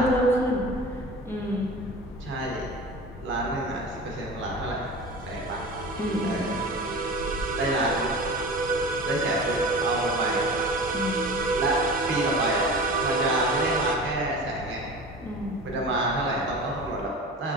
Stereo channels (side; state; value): both; normal; correlation 0.35